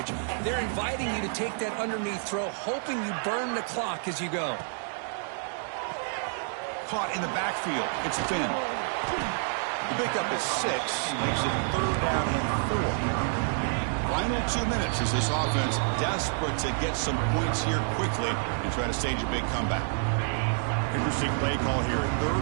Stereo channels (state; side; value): silent; left; 57 dB below the other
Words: They're inviting you to take that underneath throw, hoping you burn the clock as you go. Caught in the backfield. It's Finn. The pickup is 6. Makes it 3rd down and 4. Final 2 minutes as this offense desperate to get some points here quickly and try to stage a big comeback. Interesting play call here.